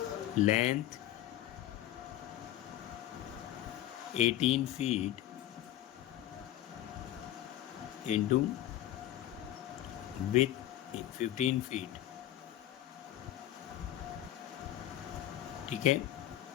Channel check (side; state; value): right; quieter; 13.3 dB